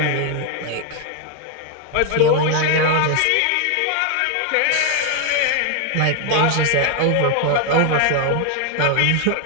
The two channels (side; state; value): both; different; correlation 0.01